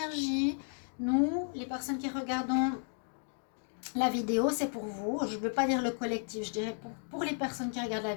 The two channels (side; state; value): right; silent; 55 dB below the other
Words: Nous, les personnes qui regardons la vidéo, c'est pour vous. Je ne veux pas dire le collectif, je dirais pour les personnes qui regardent la